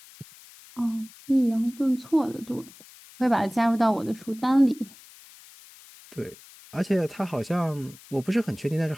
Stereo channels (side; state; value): left; noise; hiss, 22 dB below the sound